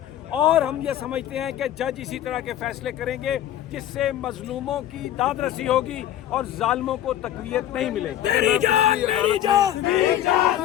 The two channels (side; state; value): right; quieter; 11.8 dB